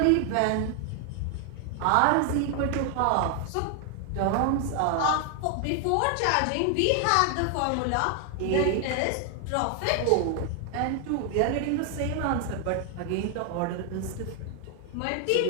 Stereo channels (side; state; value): both; different; correlation 0.00